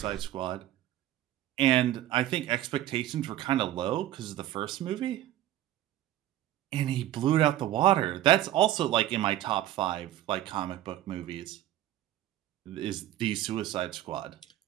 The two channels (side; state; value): left; quieter; 13.5 dB